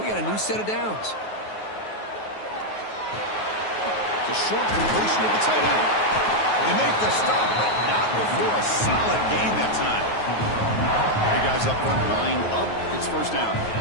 got a new set of downs. The short completion of the tight end. They make the stop, but not before a solid gain that time. The guys up front, line up. It's first down.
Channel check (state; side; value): late; right; 9.4 ms